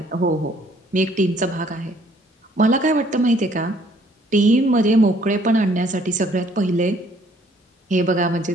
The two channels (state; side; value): normal; both; correlation 0.61